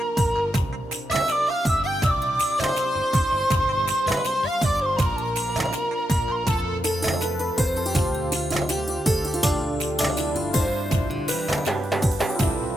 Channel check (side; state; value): both; normal; correlation 0.85